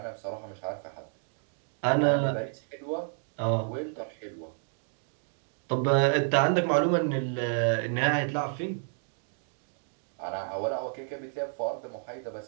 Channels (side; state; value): left; silent; 57 dB below the other